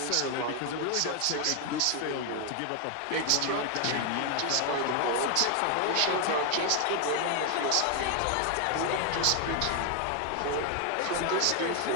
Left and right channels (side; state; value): both; different; correlation 0.00